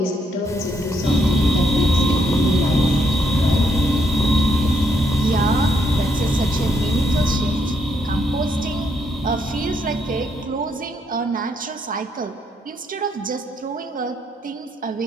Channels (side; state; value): both; normal; correlation 0.75